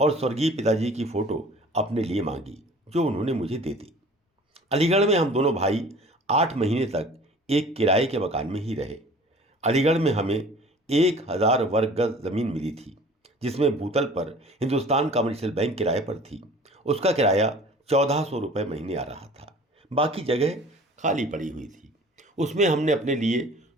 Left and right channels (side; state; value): both; normal; correlation 0.47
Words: स्वर्गीय पिताजी की फोटो अपने लिए मांगी, जो उन्होंने मुझे दे दी। अलीगढ़ में हम दोनों भाई 8 महीने तक एक किराए के मकान में ही रहे। अलीगढ़ में हमें 1000 वर्ग गज जमीन मिली थी, जिसमें भूतल पर हिंदुस्तान कमर्शियल बैंक किराए पर थी। उसका किराया 1400 रुपये महीने आ रहा था। बाकी जगह खाली पड़ी हुई थी। उसमें हमने अपने लिए